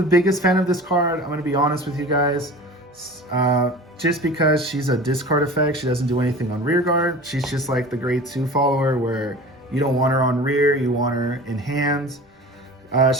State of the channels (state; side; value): normal; both; correlation 0.38